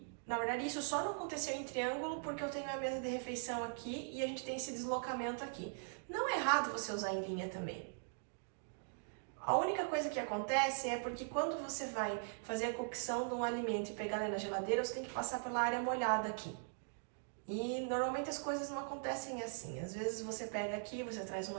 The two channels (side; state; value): left; silent; digital silence